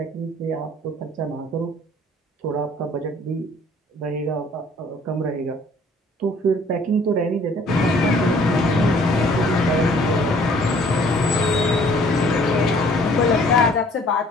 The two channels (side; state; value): both; normal; correlation 0.57